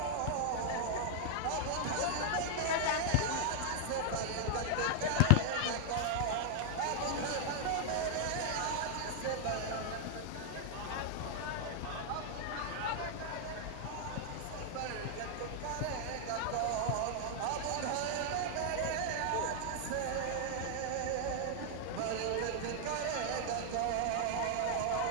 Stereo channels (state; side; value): different; both; correlation 0.00